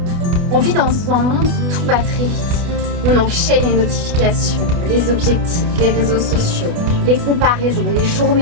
On vit dans un monde où tout va très vite. On enchaîne les notifications, les objectifs, les réseaux sociaux, les comparaisons, les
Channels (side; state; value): left; late; 28 ms